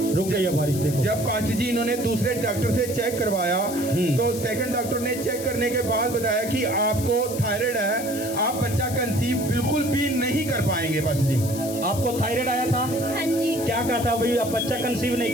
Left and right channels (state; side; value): noise; left; hiss, 10 dB below the sound